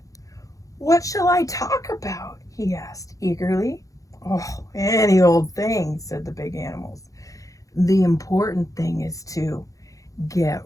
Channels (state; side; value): late; right; 0.16 ms